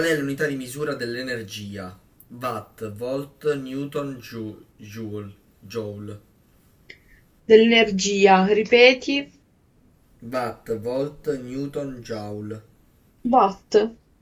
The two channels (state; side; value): identical; both; correlation 1.00